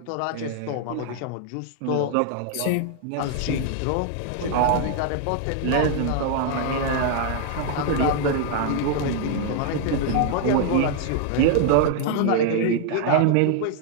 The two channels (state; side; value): different; both; correlation 0.00